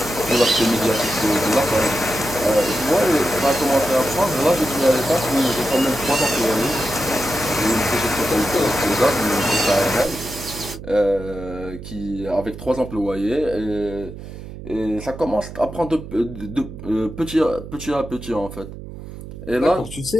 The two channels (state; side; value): noise; right; hum, 12 dB below the sound